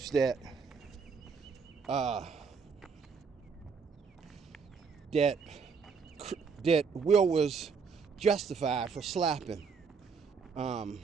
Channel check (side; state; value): left; quieter; 5.5 dB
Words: that that Will was justified for slapping